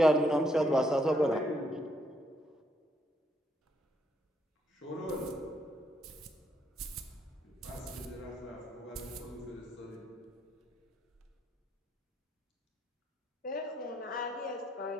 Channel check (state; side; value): normal; both; correlation 0.74